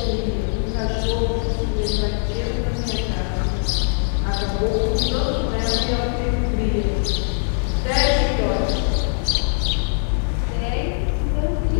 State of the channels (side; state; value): right; silent; digital silence